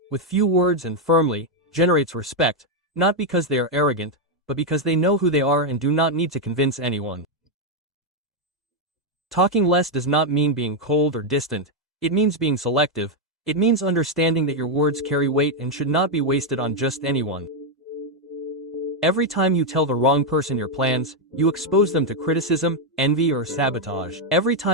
with few words and firmly, generates respect, not because they are arrogant, but because they know who they are and do not need to convince anyone. Talking less does not mean being cold or distant. It means being selective. It means understanding that your words carry weight and should not be wasted on just anyone. Every time you tell the wrong person your plans, you expose them to criticism, envy, or sabotage. Every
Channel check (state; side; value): normal; both; correlation 0.02